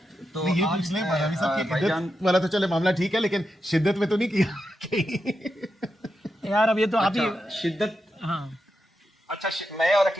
तो ये पूछ लें बादामी साहब की इद्दत वाला तो चले मामला ठीक है, लेकिन शिद्दत में तो नहीं किया यार अब ये तो आप ही शिद्दत। हाँ अच्छा, मैं और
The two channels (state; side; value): normal; both; correlation 0.87